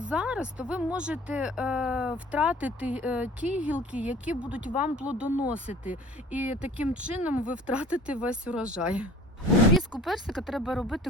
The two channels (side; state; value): both; normal; correlation 0.46